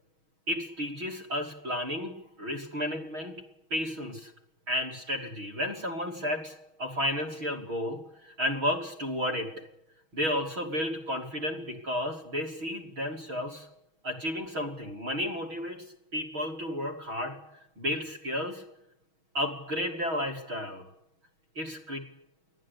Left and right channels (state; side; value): late; left; 6.3 ms